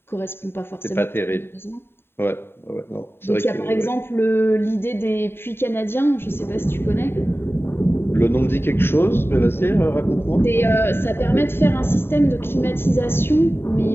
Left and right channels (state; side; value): late; right; 0.11 ms